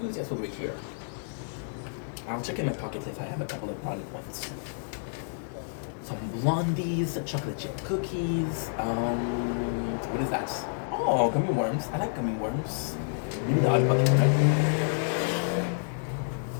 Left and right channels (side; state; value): right; silent; 58 dB below the other